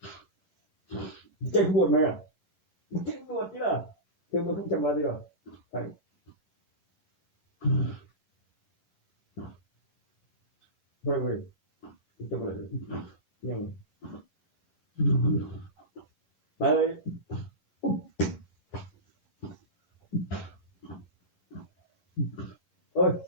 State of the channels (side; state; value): right; late; 11 ms